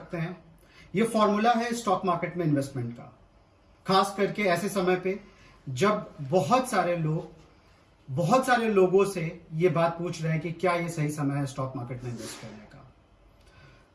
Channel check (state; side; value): identical; both; correlation 1.00